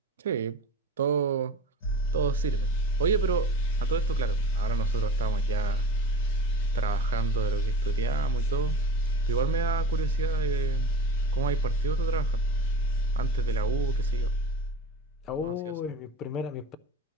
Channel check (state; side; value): normal; both; correlation 0.36